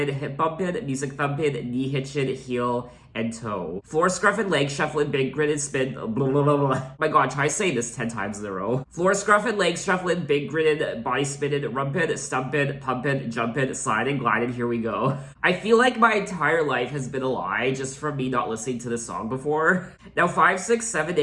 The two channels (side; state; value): both; identical; correlation 1.00